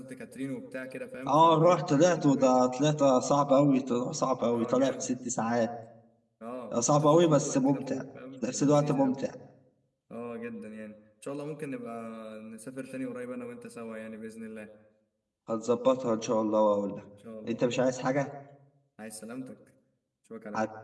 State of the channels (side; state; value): both; identical; correlation 1.00